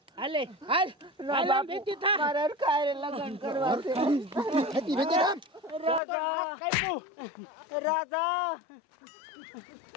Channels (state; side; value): drops out; right; at 6.0 s